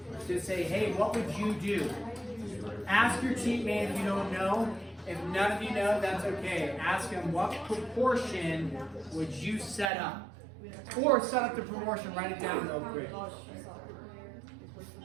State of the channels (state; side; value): drops out; left; at 9.9 s